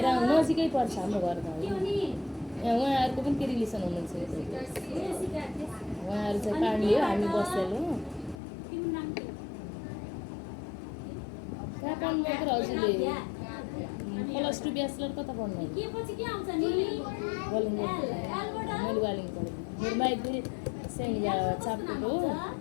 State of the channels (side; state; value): right; drops out; at 8.3 s